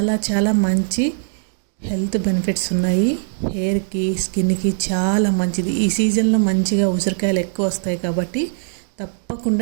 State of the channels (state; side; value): silent; left; digital silence